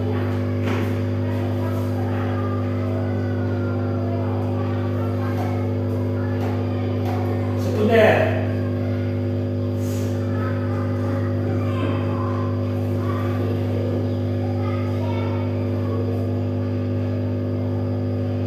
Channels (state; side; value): identical; both; correlation 1.00